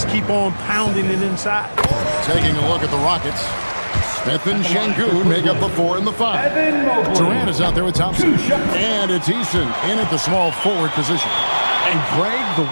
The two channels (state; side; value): inverted; both; correlation -1.00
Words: keep on pounding it inside. Taking a look at the Rockets. Smith and Şengün make up the 4 and the 5. Durant is out there with Thompson. And it's Eason in at the small forward position. And Greg, the